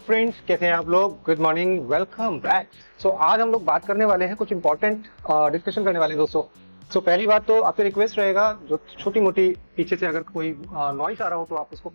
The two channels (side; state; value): both; inverted; correlation -1.00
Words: कैसे हैं आप लोग? Good morning, welcome back. So आज हम लोग बात करने वाले हैं, कुछ इंपॉर्टेंट डिस्कशन करने वाले हैं दोस्तों। सो पहली बात तो आपसे रिक्वेस्ट रहेगा, जो छोटी मोटी पीछे से अगर कोई नॉइस आ रहा हो तो आप उसको